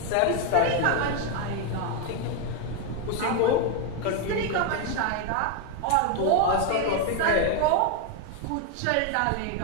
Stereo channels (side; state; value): both; different; correlation 0.01